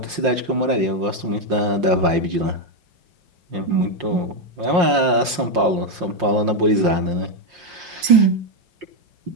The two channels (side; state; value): left; late; 5.7 ms